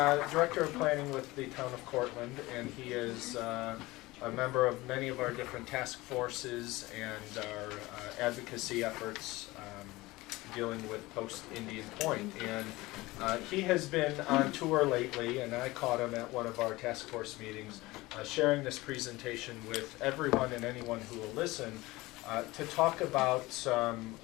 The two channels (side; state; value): right; quieter; 20.3 dB